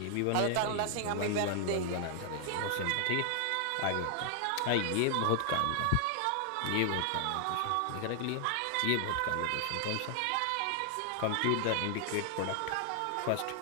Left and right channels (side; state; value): both; different; correlation 0.00